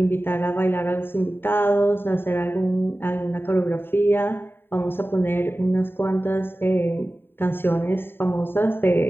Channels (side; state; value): right; late; 0.11 ms